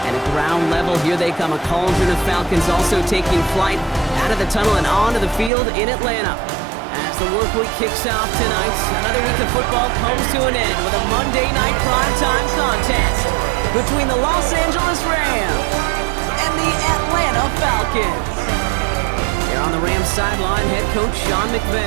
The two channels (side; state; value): left; drops out; at 5.5 s